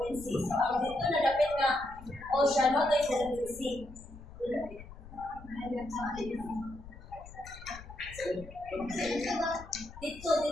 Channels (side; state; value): left; noise; rumble, 16 dB below the sound